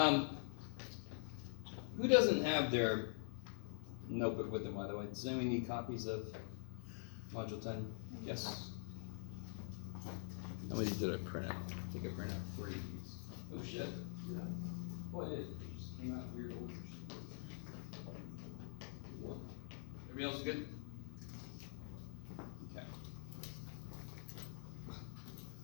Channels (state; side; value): silent; right; digital silence